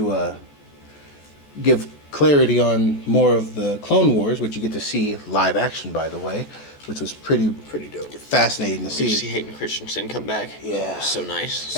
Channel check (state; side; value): late; right; 14 ms